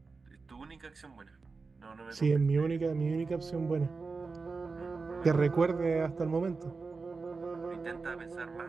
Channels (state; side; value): quieter; left; 4.3 dB